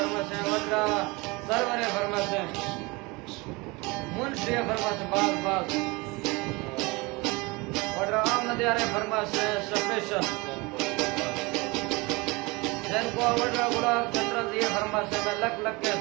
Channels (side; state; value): left; quieter; 25.1 dB